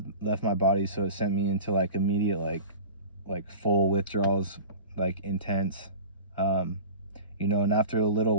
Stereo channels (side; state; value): both; inverted; correlation -0.35